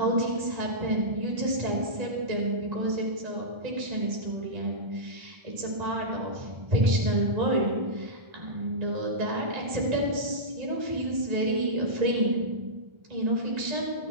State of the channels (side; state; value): left; late; 1.3 ms